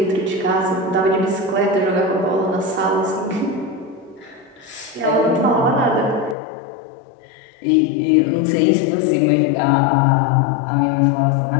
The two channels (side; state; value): right; drops out; at 6.4 s